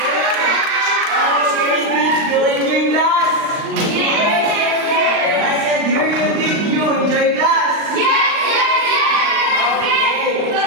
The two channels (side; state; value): left; late; 39 ms